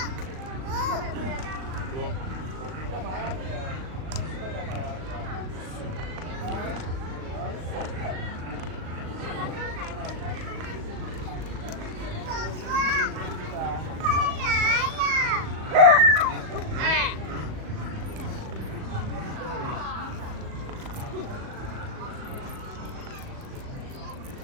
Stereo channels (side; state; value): left; late; 38 ms